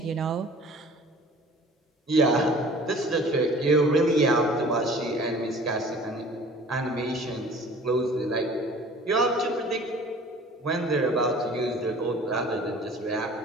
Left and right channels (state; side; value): normal; both; correlation 0.47